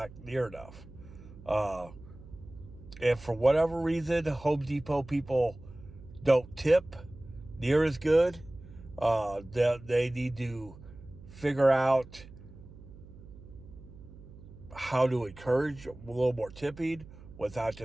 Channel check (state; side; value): noise; right; hum, 18 dB below the sound